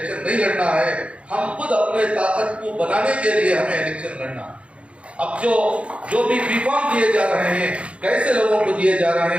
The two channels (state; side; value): late; left; 0.061 ms